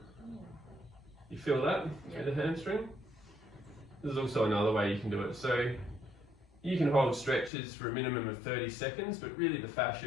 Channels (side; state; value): right; drops out; at 7.5 s